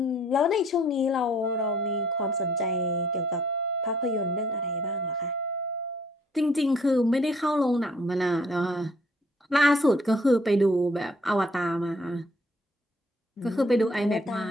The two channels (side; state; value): both; normal; correlation 0.62